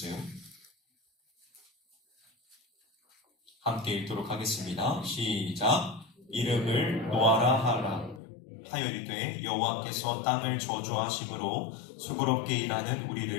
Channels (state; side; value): drops out; right; at 8.2 s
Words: 함께 읽도록 하겠습니다. 시작. 이름을 노아라 하라. 하여리되 여호와께서 땅을 저주하심으로 수고롭게 일하는